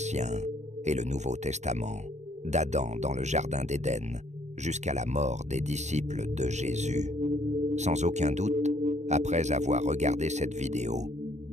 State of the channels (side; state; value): left; late; 0.33 ms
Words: et le Nouveau Testament, d'Adam dans le Jardin d'Éden jusqu'à la mort des disciples de Jésus. Sans aucun doute, après avoir regardé cette vidéo,